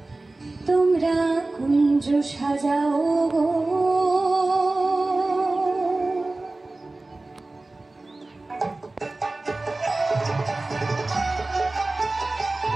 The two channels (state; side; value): quieter; left; 3.1 dB